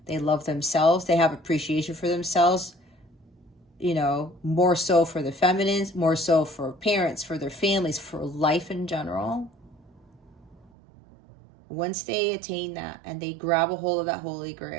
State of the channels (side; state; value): left; drops out; at 10.7 s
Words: They love themselves. They have appreciation for themselves, you know, more so for the feminines, more so for parents, for their families, for life in general. Once they attain that and they grab a hold of that Holy